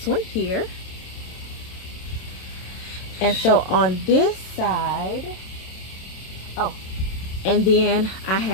one here. And so on this side, oh, and then I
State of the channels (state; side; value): late; right; 27 ms